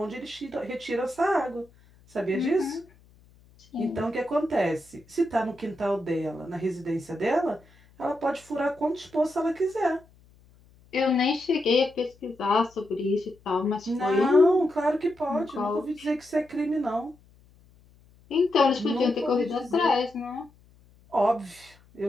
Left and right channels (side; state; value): left; noise; hum, 28 dB below the sound